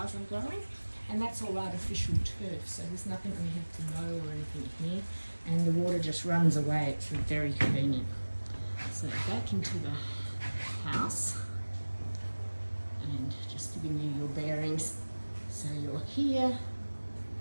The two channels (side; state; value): both; inverted; correlation -1.00